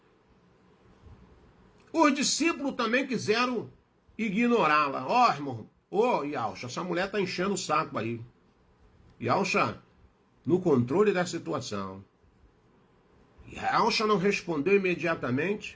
Os discípulos também quiseram ignorá-la. Ó, irmão, Yalcha, essa mulher está enchendo o saco aí. Yalcha, no controle da situação. Yalcha não respondeu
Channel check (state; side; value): identical; both; correlation 1.00